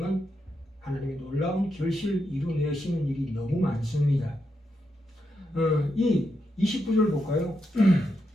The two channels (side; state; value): both; normal; correlation 0.84